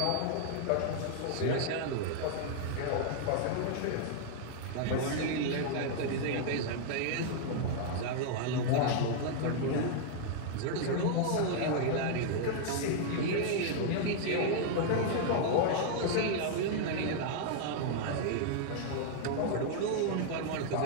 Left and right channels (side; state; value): both; different; correlation 0.00